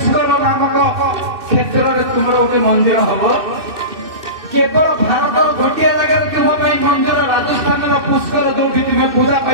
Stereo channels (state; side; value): late; left; 2.6 ms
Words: नामक क्षेत्र में तुम गोटे मंदिर हम केवल भारत गोटे जगह तुम मंदिर राजस्थान पुष्कर जो तुम्हें पूजा